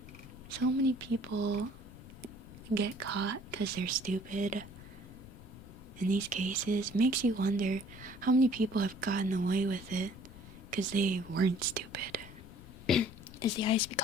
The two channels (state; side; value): noise; left; rumble, 16 dB below the sound